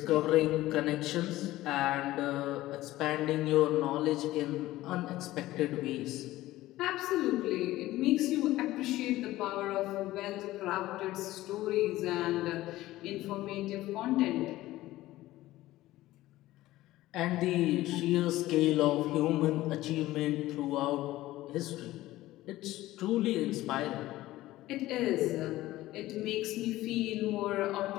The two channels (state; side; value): quieter; right; 16.4 dB